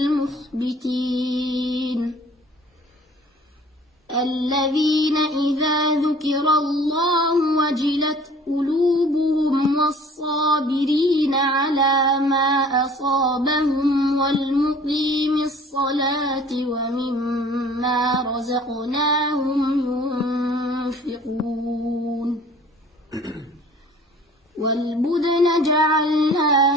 الذين إذا ذكر الله وجلت قلوبهم والصابرين على ما أصابهم والمقيم الصلاة ومما رزقناهم ينفقون والبدن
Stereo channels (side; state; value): both; normal; correlation 0.50